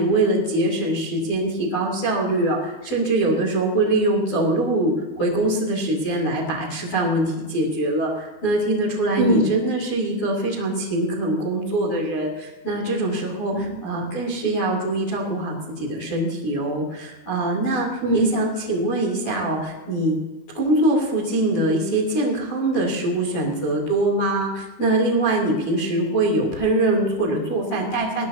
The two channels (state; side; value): late; right; 12 ms